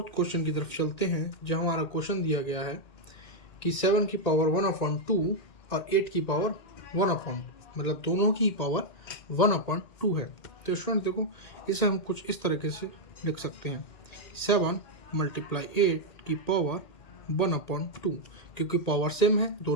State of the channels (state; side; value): late; right; 2.1 ms